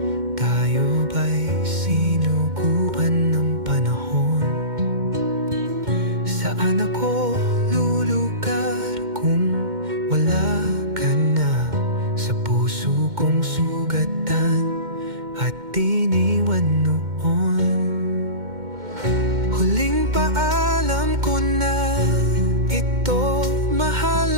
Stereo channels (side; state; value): left; late; 2.1 ms